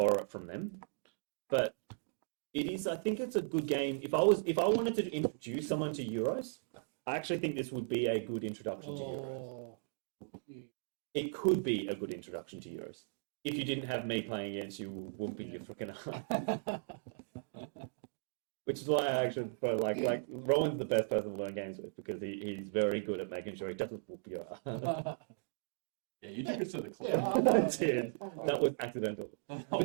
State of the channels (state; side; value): silent; left; digital silence